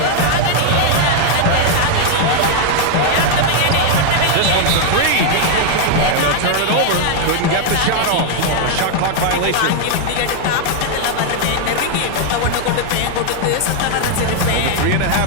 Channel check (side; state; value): both; different; correlation 0.00